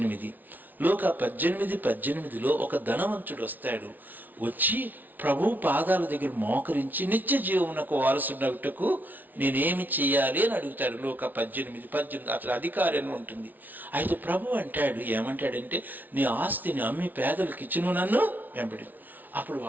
లోక 18:18లో ఒక ధనవంతుడు వస్తాడు. వచ్చి ప్రభు పాదాల దగ్గర మోకరించి నిత్య జీవమునకు వారసునగుటకు నేనేమి చేయాలి అని అడుగుతాడు. లోక 18:18 అసలు అధికారం ఉంటుంది. అయితే ప్రభు అంటాడు, ఏమంటాడంటే, నీ ఆస్తిని అమ్మి పేదలకు ఇచ్చును, నన్ను వెంబడి. అప్పుడు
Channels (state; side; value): late; left; 0.083 ms